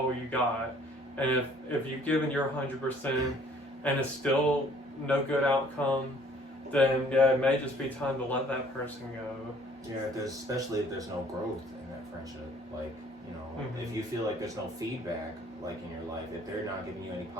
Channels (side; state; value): both; normal; correlation 0.58